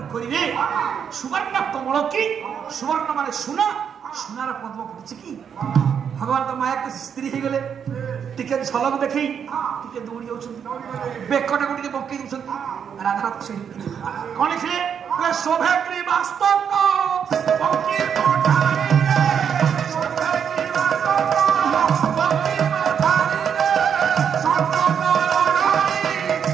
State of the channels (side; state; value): left; quieter; 7.7 dB